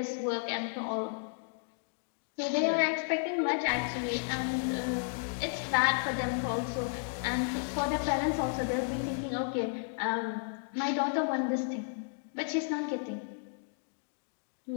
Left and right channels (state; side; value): silent; right; digital silence